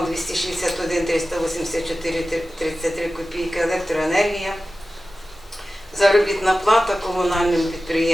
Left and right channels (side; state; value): both; normal; correlation 0.95